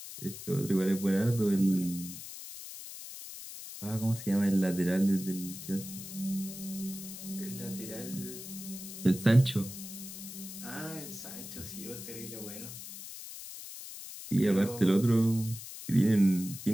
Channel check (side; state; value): left; noise; hiss, 11 dB below the sound